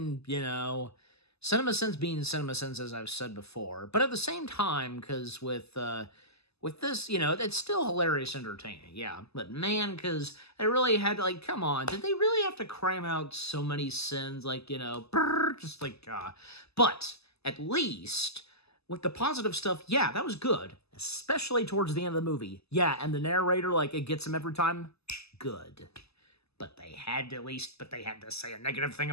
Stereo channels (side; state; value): right; late; 0.79 ms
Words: you know, Cinema Sins being Cinema Sins, as I've said before, but at the same time, because with this, you know, it's still hilarious entertaining, yeah, but man, because they really had to, like, come on, did they really have to cram out so many sins, like, you know, just like, but at least... With the positive stuff, yeah, that was good. Especially towards the end of the movie. Yeah, and the narrator, like, it gets him every time. Good. But they had to say a negative thing